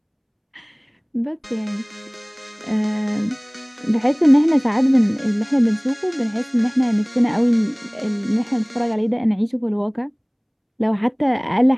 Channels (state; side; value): identical; both; correlation 1.00